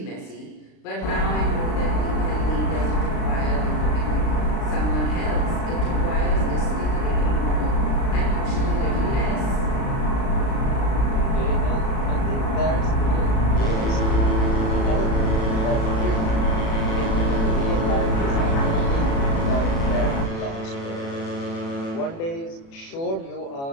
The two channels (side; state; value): right; late; 36 ms